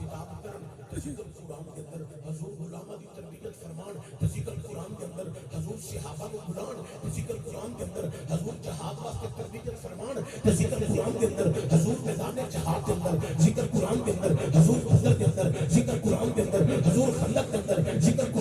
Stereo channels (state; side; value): identical; both; correlation 1.00